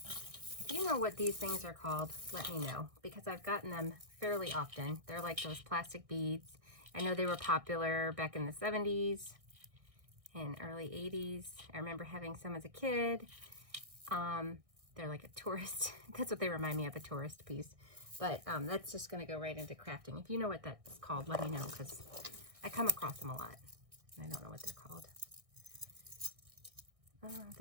If you know what these things are called, let me know, because I've gotten them fairly often. They're like those plastic beads. I know they were popular back in the 70s and early 80s. I remember having some as a kid. They're like a tourist, that's what they remind me of, a tourist piece. But that's just gonna go right into crafting. If you know what that's called, let me know, because I come across them a lot. And I don't know what they're called.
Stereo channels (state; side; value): late; left; 1.6 ms